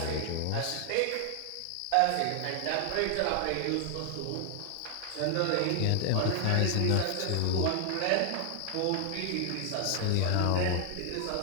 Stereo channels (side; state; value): both; different; correlation 0.00